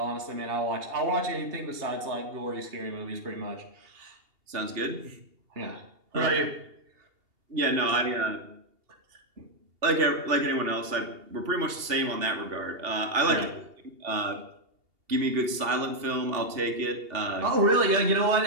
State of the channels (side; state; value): left; late; 2.8 ms